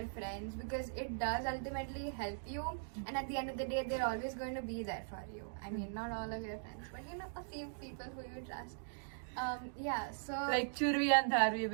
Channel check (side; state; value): left; silent; digital silence